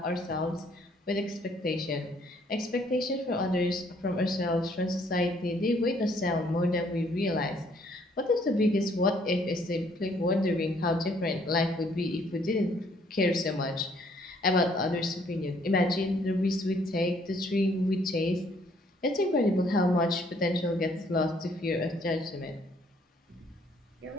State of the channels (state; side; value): normal; both; correlation 0.64